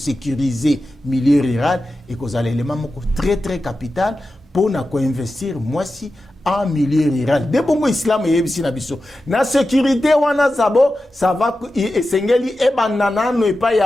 milieu rural ekozala élément moko très très capital pour na ko investir mwasi en milieu rural. De bongo islam yebisi na biso na sécurité wana zabo ça va esengeli ebandana no epa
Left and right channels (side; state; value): both; normal; correlation 0.92